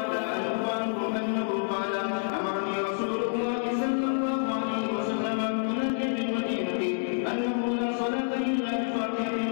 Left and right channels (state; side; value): silent; right; 59 dB below the other